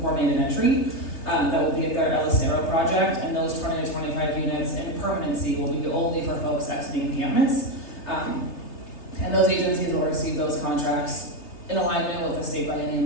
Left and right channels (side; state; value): right; late; 3.3 ms